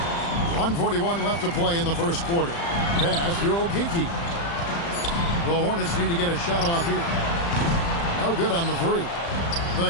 1:41 left to play in the first quarter. Pass to Okeke. The Hornets need to get a shot off here. No good on the three. The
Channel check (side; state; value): right; late; 35 ms